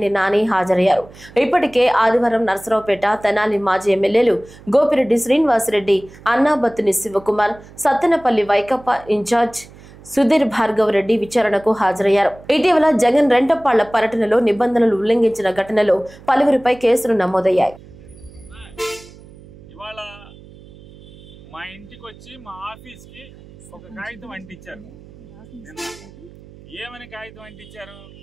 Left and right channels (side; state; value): right; noise; hum, 21 dB below the sound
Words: నాని హాజరయ్యారు. ఇప్పటికే ఆదివారం నర్సరావుపేట, తెనాలి మాజీ ఎమ్మెల్యేలు గోపిరెడ్డి శ్రీనివాసరెడ్డి, అన్నాబత్తుని శివకుమార్, సత్తెనపల్లి వైకాపా ఇన్ఛార్జ్ సుధీర్ భార్గవ్ రెడ్డి విచారణకు హాజరయ్యారు. ఇటీవల జగన్ రెంటపాళ్ల పర్యటనలో నిబంధనలు ఉల్లంఘించిన ఘటనలో పలువురిపై కేసులు నమోదయ్యాయి. మా ఇంటికి వచ్చి మా ఆఫీస్కి ఒక కాగితం అంటించారు. ఏమని కాగితం అంటించారు?